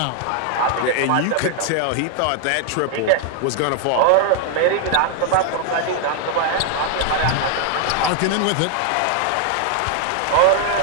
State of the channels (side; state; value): both; different; correlation 0.00